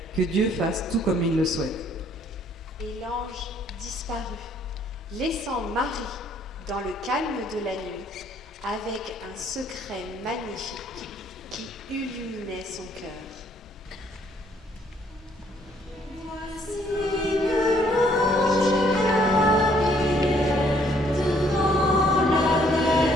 que Dieu fasse tout comme il le souhaite. » Et l'ange disparut, laissant Marie dans le calme de la nuit, avec un secret magnifique qui illuminait son cœur. Voici que l'ange Gabriel devant la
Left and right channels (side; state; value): both; normal; correlation 0.65